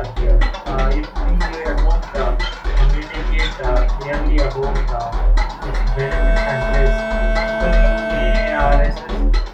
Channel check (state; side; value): identical; both; correlation 1.00